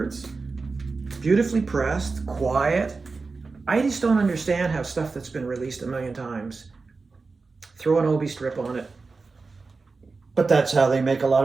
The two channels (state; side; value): quieter; left; 4.2 dB